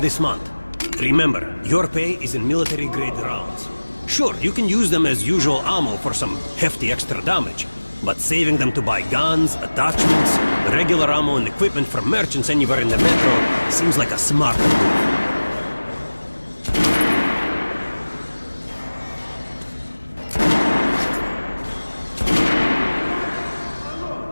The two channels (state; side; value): inverted; both; correlation -1.00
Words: month. Remember, your pay is in military-grade rounds. Sure, you can use them as usual ammo for some hefty extra damage, but saving them to buy guns, attachments, regular ammo and equipment for merchants anywhere in the metro seems like a smart move.